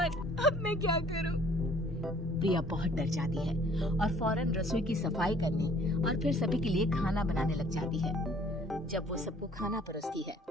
अब मैं क्या करूं? प्रिया बहुत डर जाती है और फौरन रसोई की सफाई करने और फिर सभी के लिए खाना बनाने लग जाती है। जब वो सबको खाना परोसती है,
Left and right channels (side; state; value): both; normal; correlation 0.56